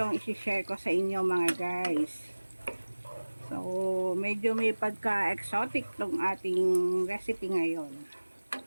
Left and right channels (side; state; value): both; inverted; correlation -1.00